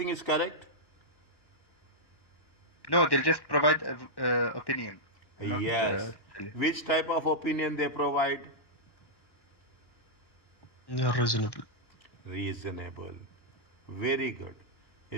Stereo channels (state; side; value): late; right; 1.1 ms